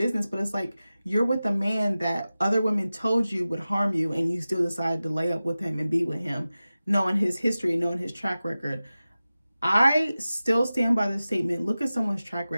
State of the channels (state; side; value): inverted; both; correlation -0.95